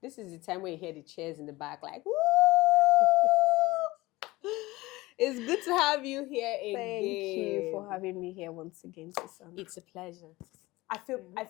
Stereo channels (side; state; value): right; quieter; 20.1 dB